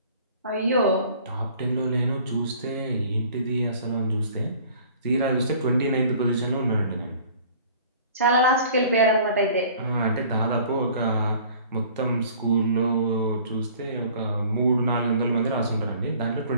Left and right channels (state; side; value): inverted; both; correlation -0.50